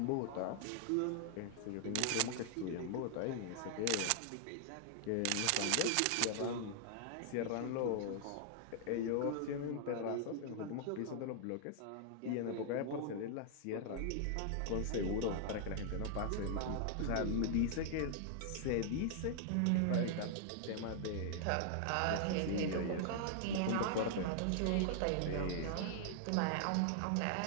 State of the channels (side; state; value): both; different; correlation -0.01